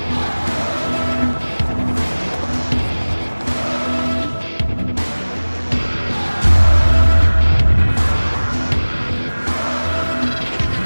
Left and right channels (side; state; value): both; inverted; correlation -1.00